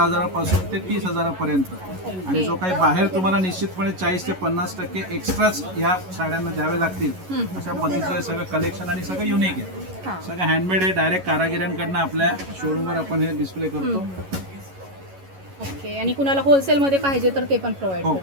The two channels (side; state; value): left; late; 11 ms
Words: ते 30,000पर्यंत, आणि जो काही बाहेर तुम्हाला निश्चितपणे 40 ते 50% एक्स्ट्राच या साड्यांना द्यावे लागतील, अशा पद्धतीचं सगळं कलेक्शन आणि सगळं युनिक आहे. सगळं हँडमेड आहे. डायरेक्ट कारागिरांकडनं आपल्या शोरूमवर आपण हे डिस्प्ले करतो. ओके. आणि कुणाला होलसेलमध्ये पाहिजे तर ते पण प्रोव्हाइड हो,